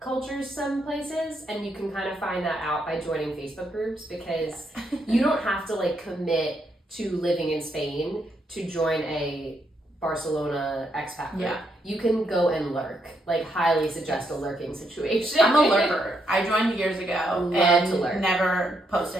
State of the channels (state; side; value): normal; both; correlation 0.78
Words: some places, and you can kind of find that out by joining Facebook groups, because you don't have to like commit to living in Spain to join a Barcelona expat group. You can go and lurk. Like, highly suggest a lurking situation. I'm a lurker. I joined years ago and never